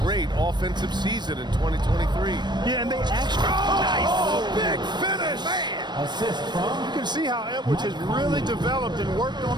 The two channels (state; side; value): late; left; 0.21 ms